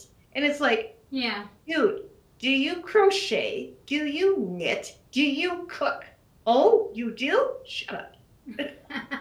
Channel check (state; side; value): identical; both; correlation 1.00